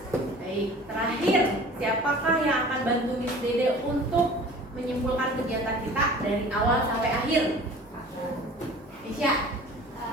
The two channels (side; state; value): both; normal; correlation 0.44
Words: Baik, terakhir, siapakah yang akan bantu Miss Dede untuk menyimpulkan kegiatan kita dari awal sampai akhir? Isya.